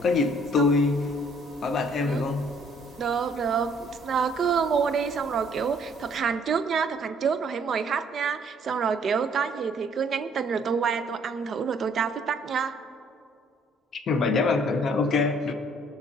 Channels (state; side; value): normal; both; correlation 0.62